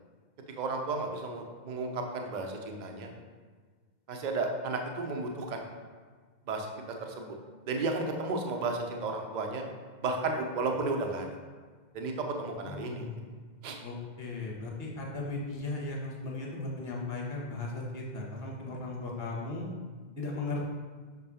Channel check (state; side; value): late; left; 2.1 ms